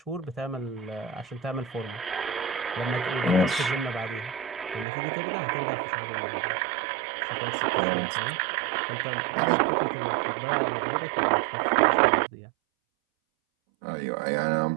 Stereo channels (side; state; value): left; drops out; at 4.9 s